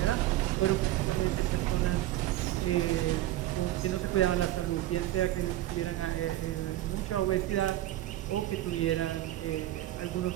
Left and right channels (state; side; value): quieter; left; 14.7 dB